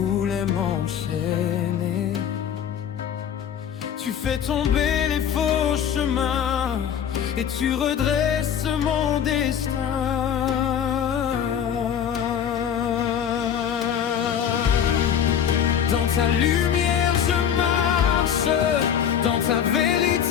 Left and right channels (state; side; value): quieter; right; 8.8 dB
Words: m'enchaîner. Tu fais tomber les faux chemins et tu redresses mon destin. Dans ta lumière je marche, dans ta